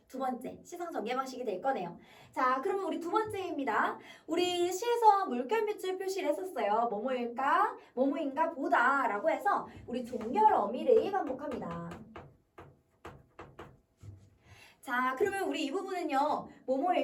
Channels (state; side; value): identical; both; correlation 1.00